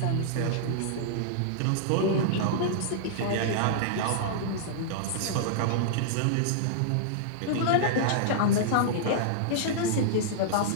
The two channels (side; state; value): both; different; correlation -0.02